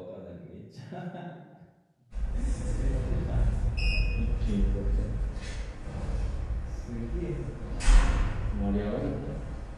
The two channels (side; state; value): both; identical; correlation 1.00